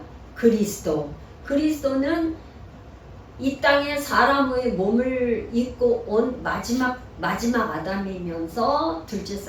그리스도. 그리스도는 이 땅에 사람의 몸을 입고 온 마지막 아담이면서 둘째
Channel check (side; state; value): both; identical; correlation 1.00